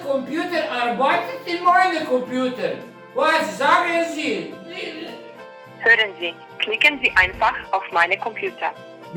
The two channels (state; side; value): identical; both; correlation 1.00